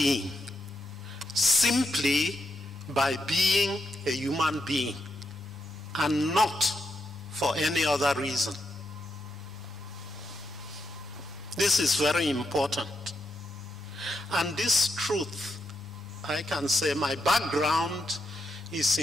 simply by being a human being and not for any other reason. This is very important. And this truth, I can say my background is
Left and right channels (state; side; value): noise; left; rumble, 28 dB below the sound